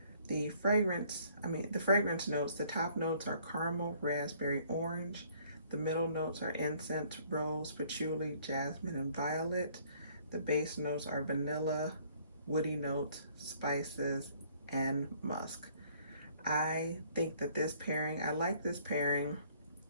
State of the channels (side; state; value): both; inverted; correlation -0.60